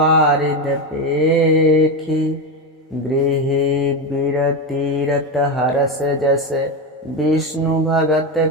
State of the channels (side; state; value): both; normal; correlation 0.14